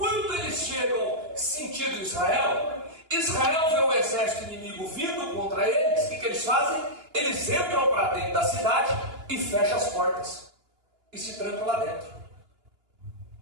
eles chegam sentido Israel, Israel vê o exército inimigo vindo contra eles. O que eles fazem? Eles entram para dentro da cidade e fecham as portas e se trancam lá dentro.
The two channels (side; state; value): left; late; 2.9 ms